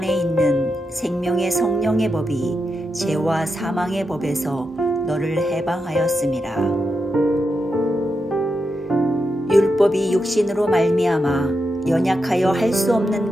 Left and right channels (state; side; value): normal; both; correlation 0.86